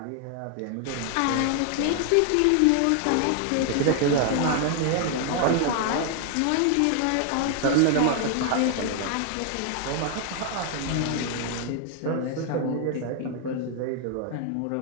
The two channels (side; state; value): both; different; correlation 0.00